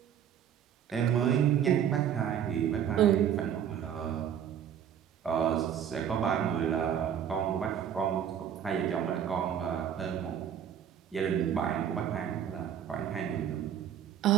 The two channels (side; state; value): left; quieter; 9.2 dB